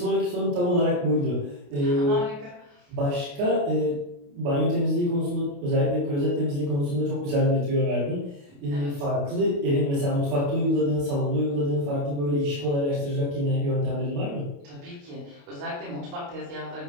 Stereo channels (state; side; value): late; left; 28 ms